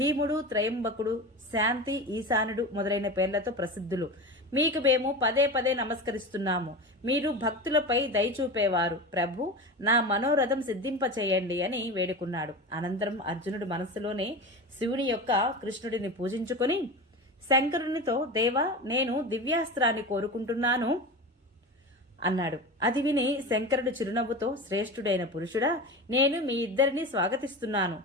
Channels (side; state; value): both; normal; correlation 0.27